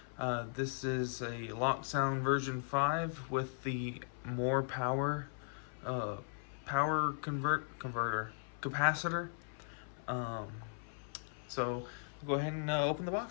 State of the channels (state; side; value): silent; right; 52 dB below the other